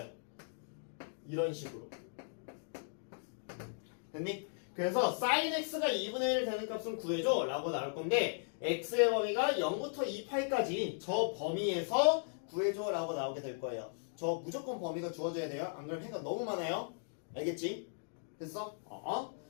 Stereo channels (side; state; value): right; silent; digital silence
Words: 이런 식으로. 됐니? 그래서 sin x가 2분의 1 되는 값은 구해줘 라고 나올 건데 x의 범위가 0부터 2파이까지 저 범위에서 구해줘 라고 나오게 될 거예요. 저 무조건 범위가 주어져야 돼요. 안 그러면 해가 너무 많아요. 알겠지? 됐어?